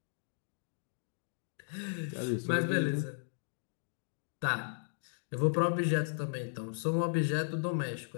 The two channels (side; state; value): right; silent; digital silence